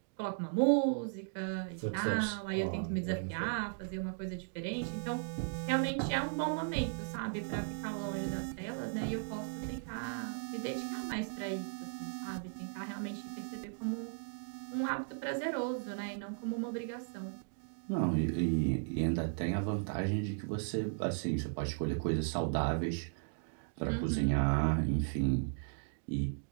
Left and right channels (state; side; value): silent; left; digital silence